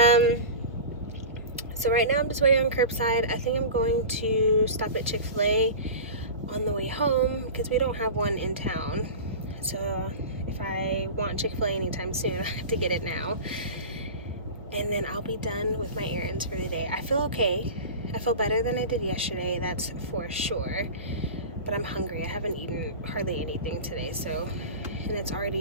So right now I'm just waiting on curbside. I think I'm going to stop at Chick-fil-A on the way home because we don't have one in town. So if I want Chick-fil-A anytime soon, I have to get it now. And then I'll be done with my errands for the day. I feel okay. I feel better than I did yesterday, that's for sure. But I'm hungry. I haven't eaten hardly anything today, and it's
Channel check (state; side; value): inverted; both; correlation -0.31